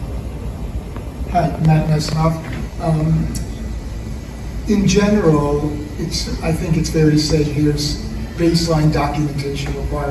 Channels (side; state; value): both; identical; correlation 1.00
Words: Hi, Matt Nesnoff. In general, I think it's fair to say here's baseline documentation